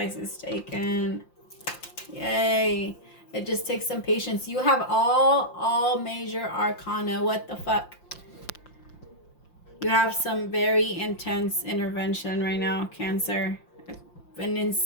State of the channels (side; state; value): right; late; 5.7 ms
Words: is taken. Yay. It just takes some patience. You have all major arcana. What the fuck? You have some very intense intervention right now, Cancer. An